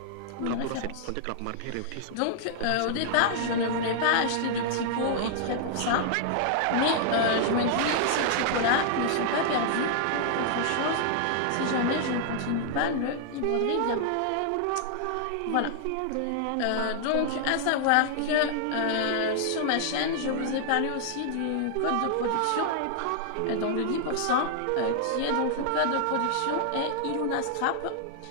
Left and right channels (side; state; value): both; different; correlation -0.01